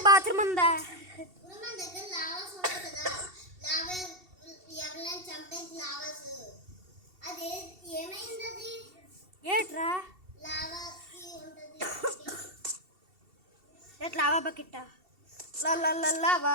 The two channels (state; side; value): late; left; 2.7 ms